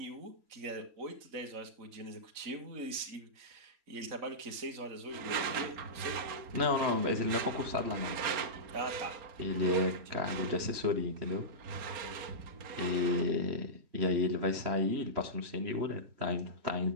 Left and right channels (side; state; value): left; late; 3.9 ms